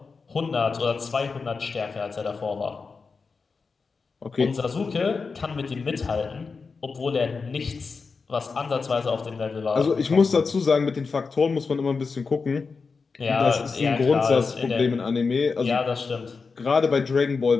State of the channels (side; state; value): right; quieter; 4.7 dB